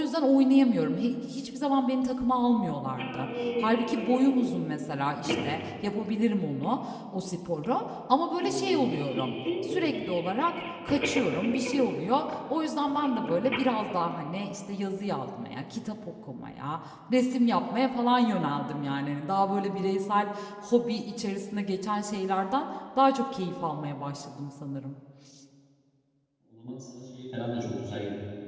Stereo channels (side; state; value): both; identical; correlation 1.00